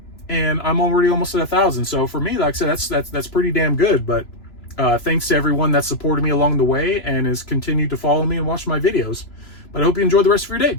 and I'm already almost at 1,000. So for me, like I said, that's pretty damn good. But thanks to everyone that supported me along the way and has continued to follow me and watch my videos. But I hope you enjoy the rest of your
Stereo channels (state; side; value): late; right; 3.0 ms